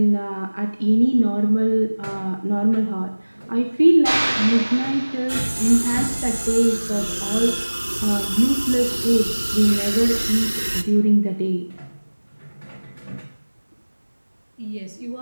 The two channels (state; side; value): inverted; both; correlation -1.00